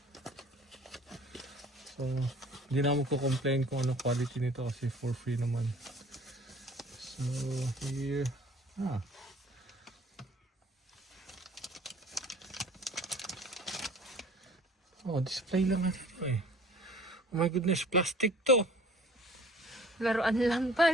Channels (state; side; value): normal; both; correlation 0.49